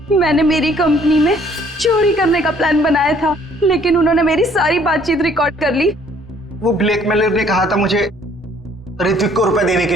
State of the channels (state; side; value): normal; both; correlation 0.60